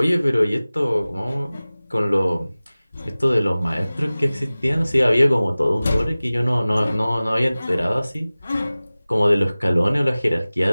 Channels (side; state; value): both; inverted; correlation -0.98